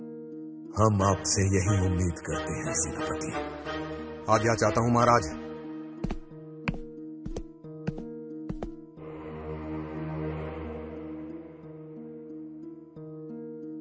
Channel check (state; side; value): identical; both; correlation 1.00